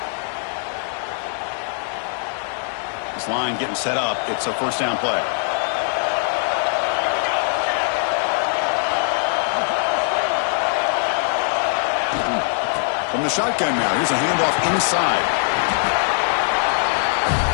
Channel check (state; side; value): silent; right; 65 dB below the other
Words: This line getting set up. It's a first down play. From the shotgun now, here's a handoff inside.